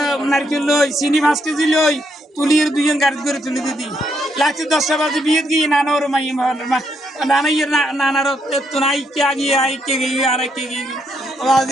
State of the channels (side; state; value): both; normal; correlation 0.76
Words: নারকেল লই চিনি 5 কেজি লই তুলির দুইজন গাড়ি করে তুলি দিদি লাগছে 10টা বাজে বিয়ে গিয়ে নানার মাই নানাইয়ের নানার তো নাই কে গিয়ে আই কে গিয়ে আর কে গিয়ে